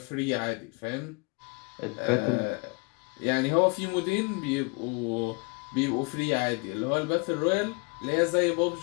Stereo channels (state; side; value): quieter; right; 31.2 dB